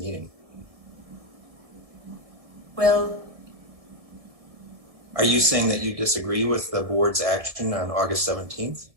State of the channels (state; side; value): late; left; 1.7 ms